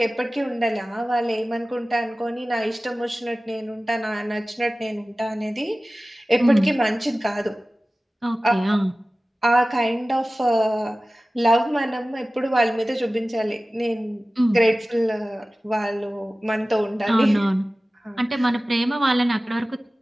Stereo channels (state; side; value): normal; both; correlation 0.97